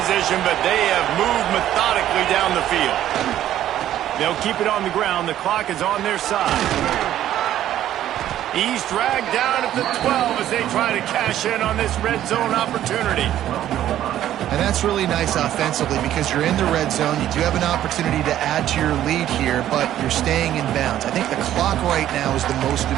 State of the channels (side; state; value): left; quieter; 12.1 dB